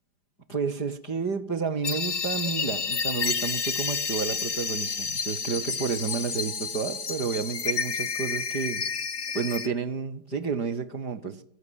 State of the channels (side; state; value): right; late; 5.0 ms